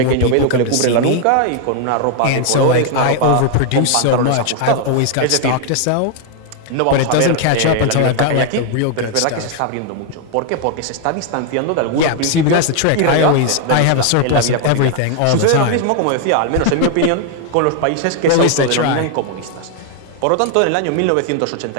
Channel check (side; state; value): both; different; correlation 0.00